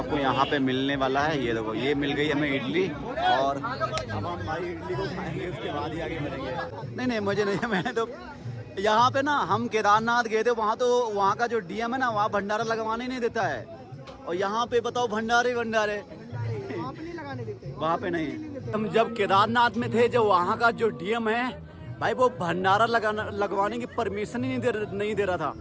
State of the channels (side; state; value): both; identical; correlation 1.00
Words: यहाँ पे मिलने वाला है। ये देखो ये मिल गई हमें इडली और अब हम भाई इडली को खाएंगे, उसके बाद ही आगे मिलेंगे। नहीं मुझे नहीं, मैंने तो यहाँ पे ना हम केदारनाथ गए थे, वहाँ तो वहाँ का जो DM है ना, वहाँ भंडारा लगवाने नहीं देता है। और यहाँ पे बताओ भंडारे वहाँ पे नहीं। हम जब केदारनाथ में थे, जो वहाँ का जो DM है भाई, वो भंडारा लगवाने की परमिशन ही नहीं दे रहा था।